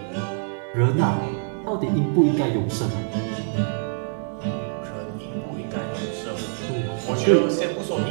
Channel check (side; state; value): left; silent; 57 dB below the other